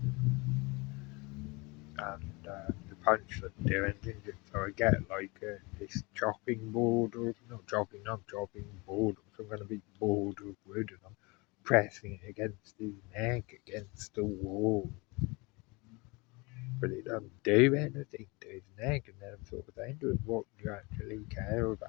and the punch didn't do anything. So I get like this chopping board, or not chopping board, or some kind of big board of wood, and I'm pressing it against his neck, against the wall. But it doesn't do anything to his neck, and then I'm sort of saying to him, what do you actually care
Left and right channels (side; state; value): right; quieter; 26.8 dB